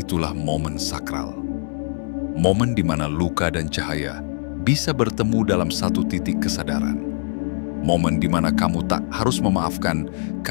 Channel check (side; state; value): right; silent; digital silence